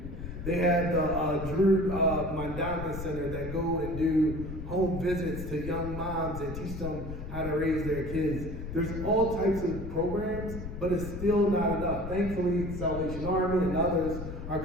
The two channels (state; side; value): noise; left; rumble, 8 dB below the sound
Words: They had the Drew Mondana Center that go and do home visits to young moms and teach them how to raise their kids. There's all types of programs, but it's still not enough. Thankfully, Salvation Army and others are